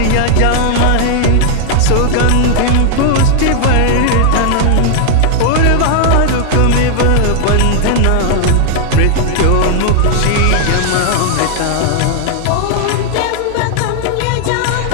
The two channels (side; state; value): both; different; correlation 0.00